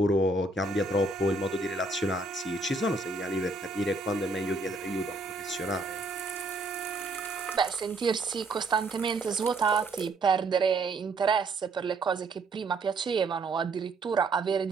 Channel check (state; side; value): quieter; left; 3.3 dB